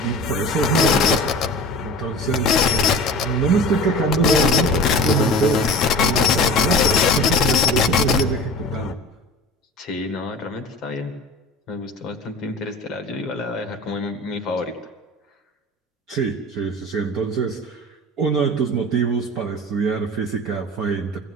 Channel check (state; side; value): normal; both; correlation 0.36